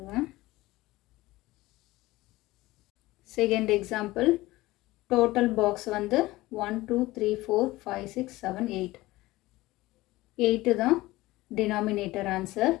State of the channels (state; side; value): quieter; right; 18.7 dB